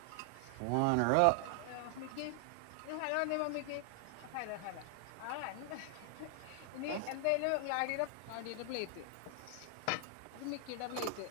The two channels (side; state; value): both; different; correlation 0.00